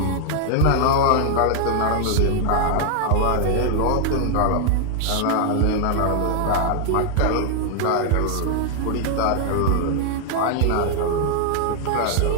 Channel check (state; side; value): different; both; correlation 0.00